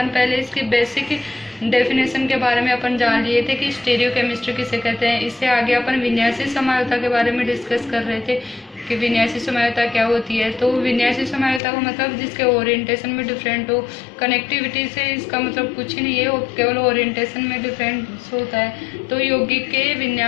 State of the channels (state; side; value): drops out; right; at 11.6 s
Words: पहले इसकी बेसिक डेफिनेशन के बारे में अपन जान लिए थे कि स्टीरियो केमिस्ट्री किसे कहते हैं। इससे आगे अपन विन्यासी समायोता के बारे में डिस्कस कर रहे थे कि विन्यासी समायोता क्या होती है। तो विन्यासी समायोता का मतलब जिसके ओरिएंटेशन में डिफरेंट हो। कनेक्टिविटी से इसका मतलब कुछ ही नहीं है, वो केवल ओरिएंटेशन में डिफरेंस होता है। तो यौगिक के